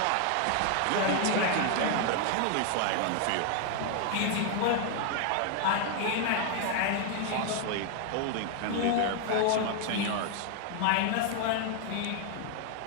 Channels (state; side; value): different; both; correlation 0.00